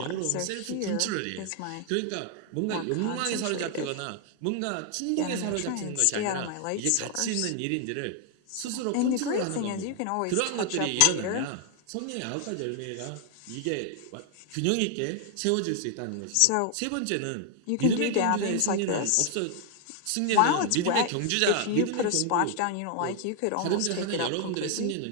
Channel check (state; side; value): different; both; correlation 0.00